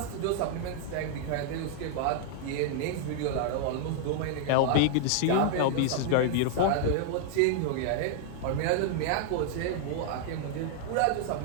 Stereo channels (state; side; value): different; both; correlation 0.00